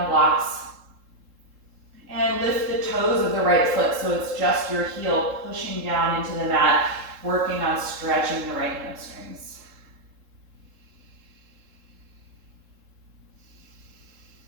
blocks. And lift the toes of the right foot so it's just your heel pushing down into the mat, working on stretching the right hamstrings.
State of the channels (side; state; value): left; late; 3.7 ms